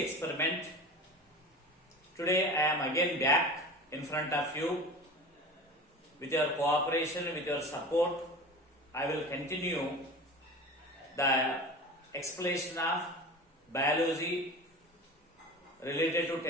Today I am again back in front of you. With your cooperation, with your support, I will continue the explanation of biology related to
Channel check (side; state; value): both; normal; correlation 0.34